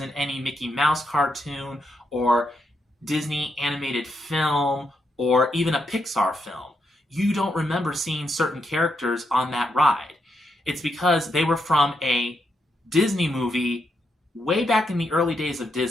any Mickey Mouse cartoon or Disney animated film or even a Pixar film. You don't remember seeing certain characters on that ride. It's because they were from a Disney movie way back in the early days of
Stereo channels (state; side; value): normal; both; correlation 0.81